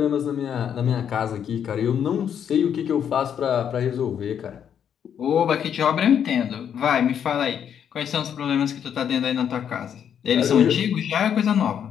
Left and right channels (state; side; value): quieter; right; 8.6 dB